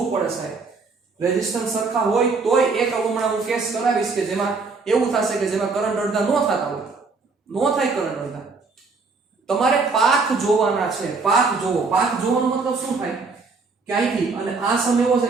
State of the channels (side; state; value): left; quieter; 4.3 dB